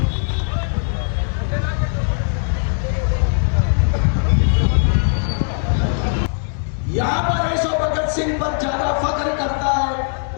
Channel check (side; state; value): right; silent; 66 dB below the other